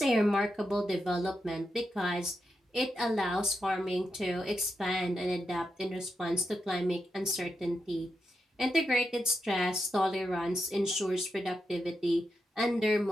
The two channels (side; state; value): both; normal; correlation 0.86